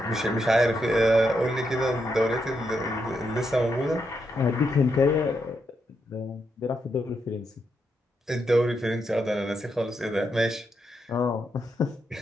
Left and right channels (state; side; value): normal; both; correlation 0.82